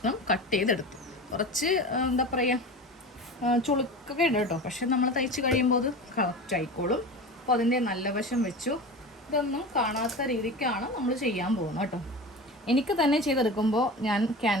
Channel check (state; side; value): normal; both; correlation 0.31